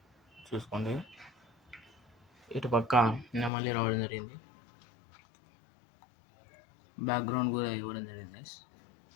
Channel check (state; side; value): drops out; right; at 3.5 s